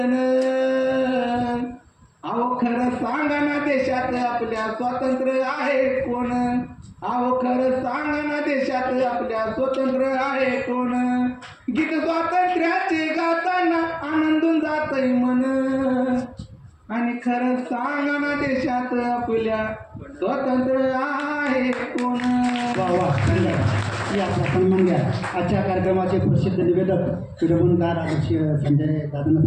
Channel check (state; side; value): identical; both; correlation 1.00